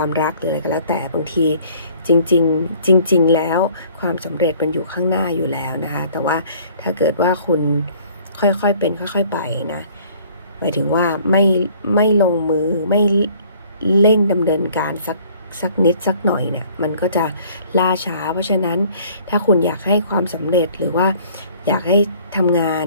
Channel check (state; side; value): inverted; both; correlation -0.56